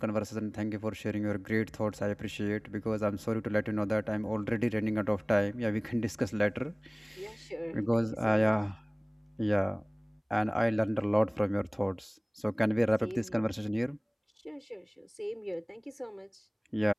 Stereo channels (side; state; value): both; identical; correlation 1.00